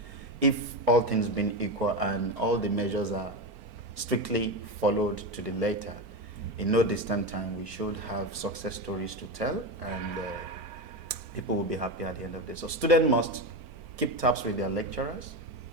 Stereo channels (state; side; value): late; left; 4.4 ms